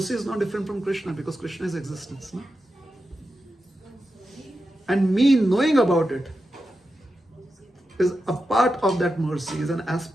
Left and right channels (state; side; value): normal; both; correlation 0.90